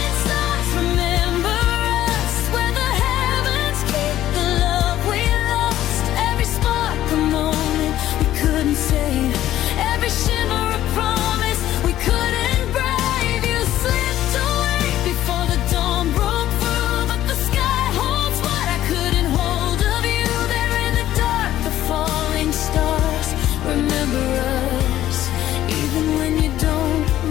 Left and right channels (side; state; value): right; quieter; 13.2 dB